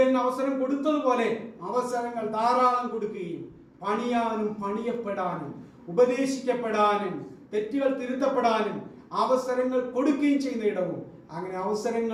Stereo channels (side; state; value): both; identical; correlation 1.00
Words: അവസരം കൊടുത്തതുപോലെ അവസരങ്ങൾ ധാരാളം കൊടുക്കുകയും പണിയാനും പണിയപ്പെടാനും ഉപദേശിക്കപ്പെടാനും തെറ്റുകൾ തിരുത്തപ്പെടാനും അവസരങ്ങൾ കൊടുക്കുകയും ചെയ്യുന്ന ഇടവും, അങ്ങനെ